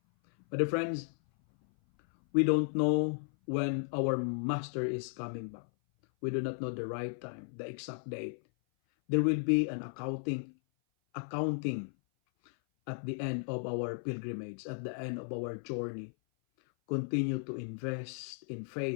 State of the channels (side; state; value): right; silent; 55 dB below the other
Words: But friends, we don't know when our master is coming back. We do not know the right time, the exact date. There will be an accounting at the end of our pilgrimage, at the end of our journey. Continue to invest in